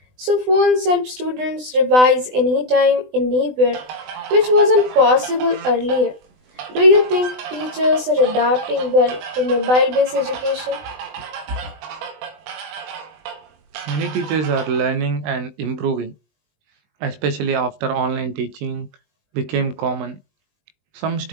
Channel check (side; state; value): left; late; 20 ms